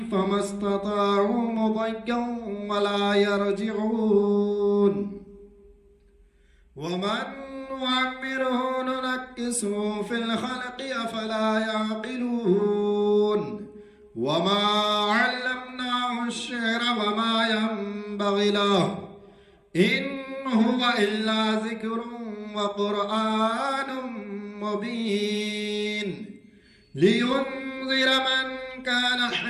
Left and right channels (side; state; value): both; identical; correlation 1.00